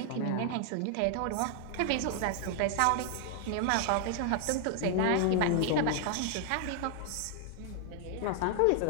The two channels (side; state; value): both; different; correlation 0.00